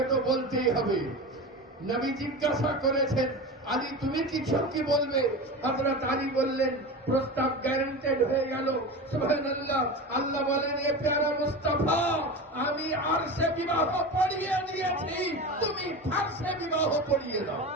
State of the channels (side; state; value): both; normal; correlation 0.27